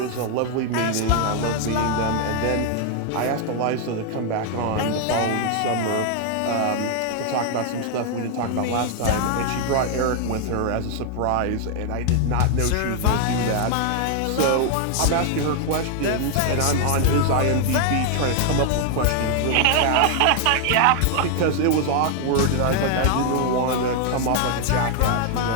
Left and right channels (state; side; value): different; both; correlation 0.00